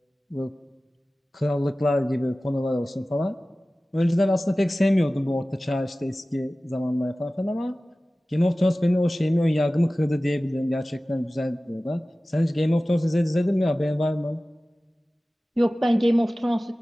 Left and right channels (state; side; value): normal; both; correlation 0.97